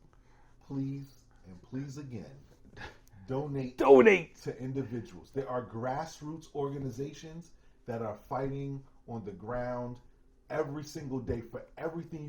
and please again, donate to individuals. There are grassroots organizations that are fighting on the ground every single day for everything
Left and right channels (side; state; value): both; identical; correlation 1.00